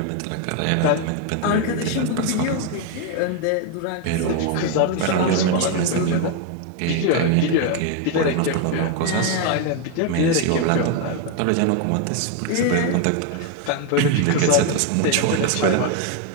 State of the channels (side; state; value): both; different; correlation 0.01